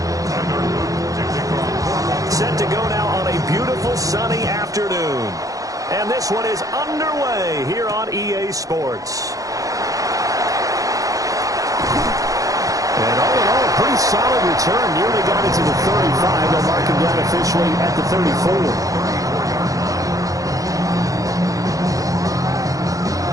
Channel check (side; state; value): left; late; 0.17 ms